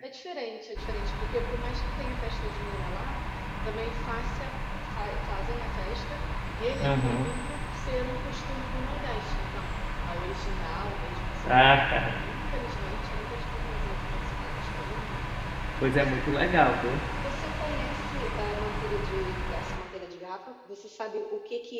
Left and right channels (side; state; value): both; identical; correlation 1.00